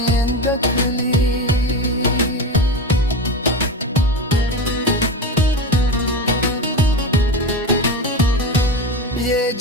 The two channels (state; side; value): normal; both; correlation 0.22